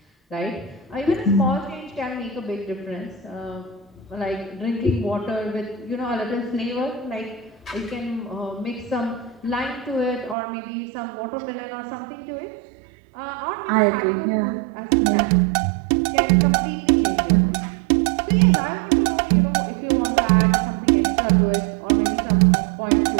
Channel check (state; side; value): drops out; left; at 10.4 s